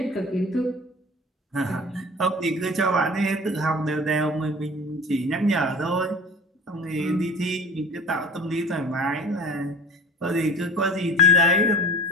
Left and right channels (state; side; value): normal; both; correlation 0.40